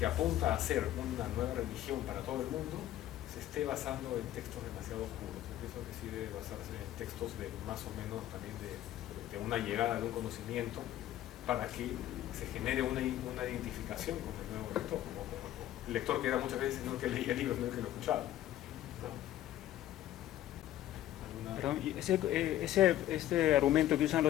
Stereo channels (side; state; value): right; quieter; 13.1 dB